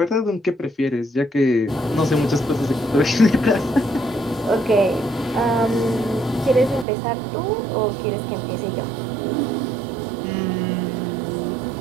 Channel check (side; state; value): left; drops out; at 6.9 s